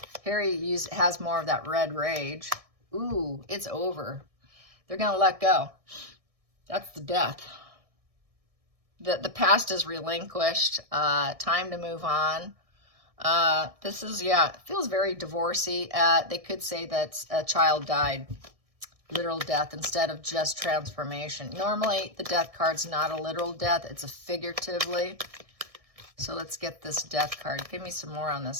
Harry has more of that red rage. Ooh, it's over. They're going to let go. That's the death. The past is relinquished. Time to move on. This is, yeah, it feels very divorcey. They could say that a child died. Literal death instead of just transformation. Normally, the death card's not a literal death. It's a figuratively. So let's get this death card. Give me some more on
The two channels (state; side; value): late; left; 1.6 ms